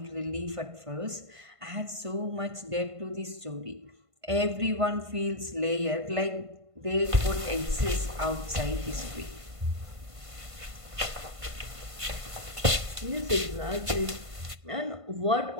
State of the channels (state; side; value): late; left; 1.5 ms